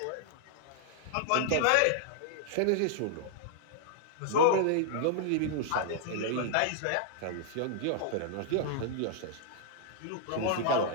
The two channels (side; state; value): both; different; correlation -0.01